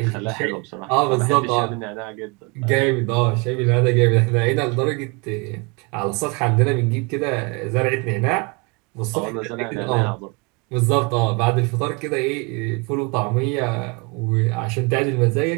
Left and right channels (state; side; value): quieter; left; 29.7 dB